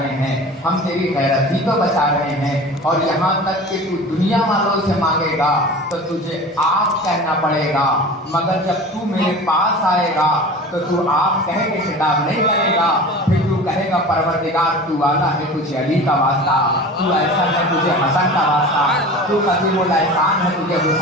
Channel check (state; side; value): normal; both; correlation 0.37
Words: ہیں، ہم تیری غیرت ہی تو بچا رہے ہیں۔ اور یہاں تک کہ تو دنیا والوں سے مانگے گا تو تجھے آپ کہنا پڑے گا، مگر جب تو میرے پاس آئے گا تو تو آپ کہہ کے خطاب نہیں کرے گا، پھر تو کہے گا پروردگار تو والا ہے تجھے علی کا واسطہ، تو ایسا ہے تجھے حسن کا واسطہ، تو قدیم الاحسان ہے تجھے